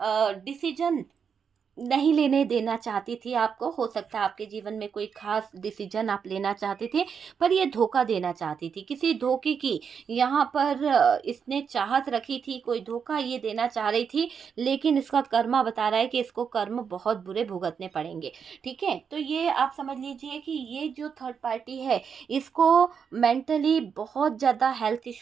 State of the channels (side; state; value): left; quieter; 6.7 dB